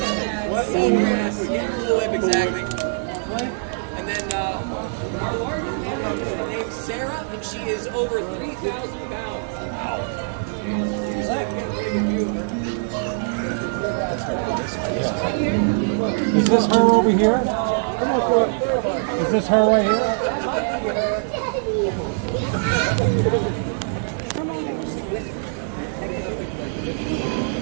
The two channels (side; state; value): left; silent; 64 dB below the other